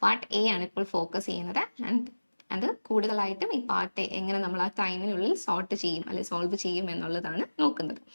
പാർട്ട് A ആണ് ഇപ്പോൾ ഫോക്കസ് ചെയ്യുന്നത്. ആൻഡ് അത് കൂടുതലായിട്ടും ഈ പാർട്ട് എങ്ങനെ നമ്മൾ ആ ടൈമിനുള്ളിൽ സോർട്ട് ചെയ്യും അല്ലെങ്കിൽ സോൾവ് ചെയ്യും എന്നുള്ളതാണ് നോക്കുന്നത്.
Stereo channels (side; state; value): both; inverted; correlation -1.00